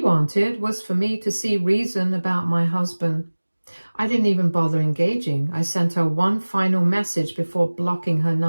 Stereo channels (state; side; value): inverted; both; correlation -1.00